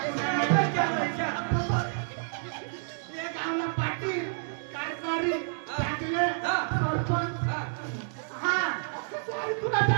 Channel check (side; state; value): left; silent; 58 dB below the other